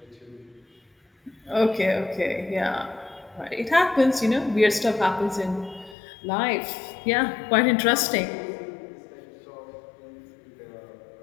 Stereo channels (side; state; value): right; drops out; at 6.0 s